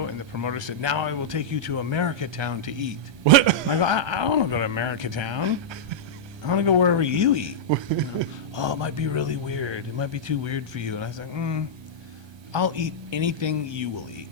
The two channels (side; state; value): left; late; 1.3 ms